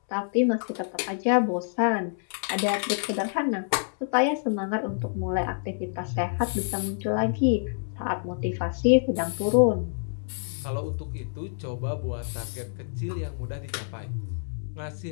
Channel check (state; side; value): silent; right; 60 dB below the other